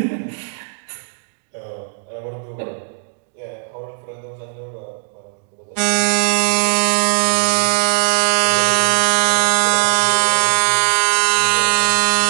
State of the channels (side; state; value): left; silent; digital silence